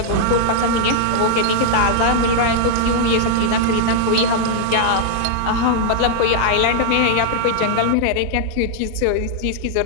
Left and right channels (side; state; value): both; different; correlation -0.01